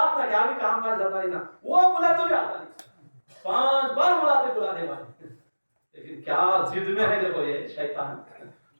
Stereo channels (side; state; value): both; inverted; correlation -1.00